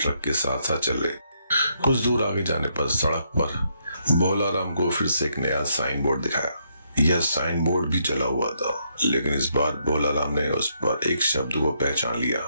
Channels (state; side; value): inverted; both; correlation -0.75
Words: के साथ साथ चल रहे। कुछ दूर आगे जाने पर सड़क पर भोला राम को फिर से एक नया साइन बोर्ड दिखाया। यह साइन बोर्ड भी जला हुआ था, लेकिन इस बार भोला राम ने उस पर एक शब्द को पहचान लिया।